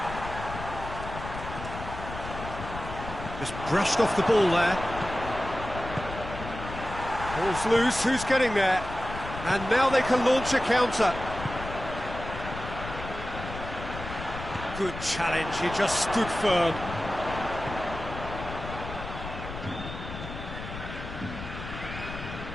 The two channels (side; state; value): left; noise; rumble, 9 dB below the sound